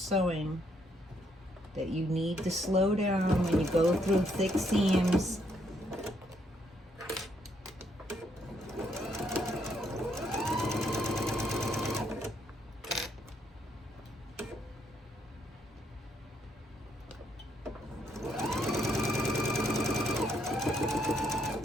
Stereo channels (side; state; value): both; normal; correlation 0.73